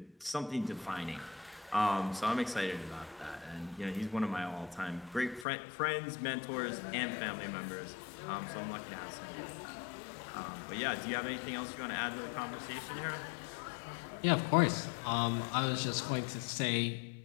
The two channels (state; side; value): drops out; right; at 5.5 s